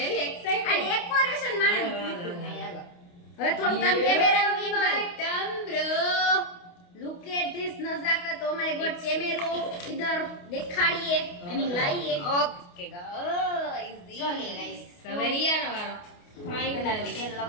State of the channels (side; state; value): right; late; 28 ms